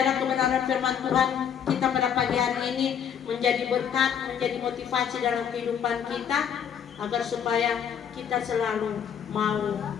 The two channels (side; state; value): right; quieter; 8.3 dB